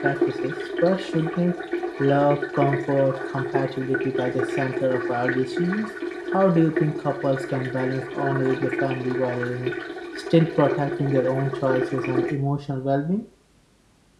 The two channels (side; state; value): both; identical; correlation 1.00